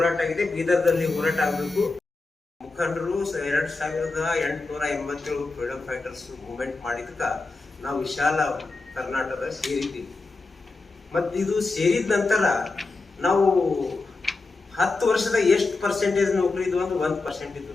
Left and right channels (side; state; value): right; quieter; 3.6 dB